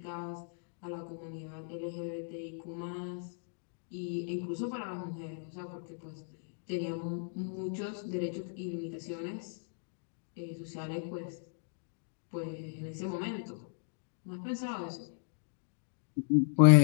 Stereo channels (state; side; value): silent; right; digital silence